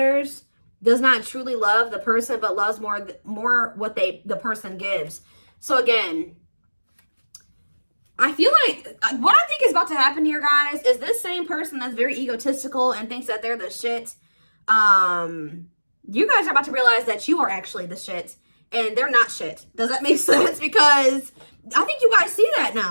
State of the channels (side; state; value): both; inverted; correlation -1.00